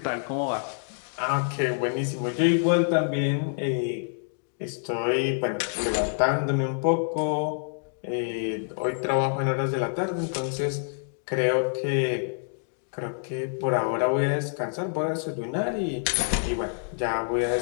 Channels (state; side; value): silent; right; digital silence